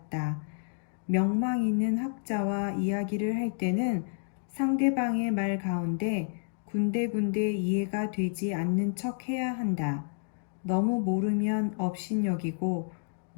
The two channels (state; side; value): silent; right; digital silence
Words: 명망 있는 학자와 이야기를 할 때는 상대방의 말 가운데 군데군데 이해가 되지 않는 척 해야 한다. 너무 모르면 업신여기고